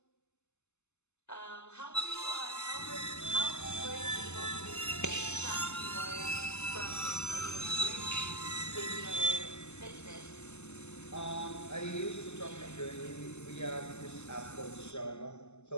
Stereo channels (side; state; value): right; late; 0.82 ms